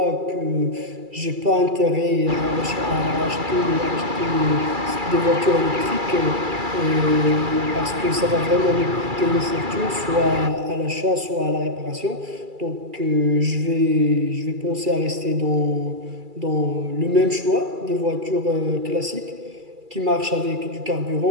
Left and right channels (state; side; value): late; left; 2.3 ms